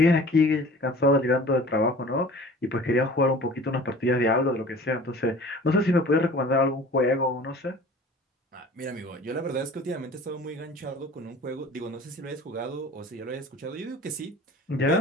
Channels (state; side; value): normal; both; correlation 0.44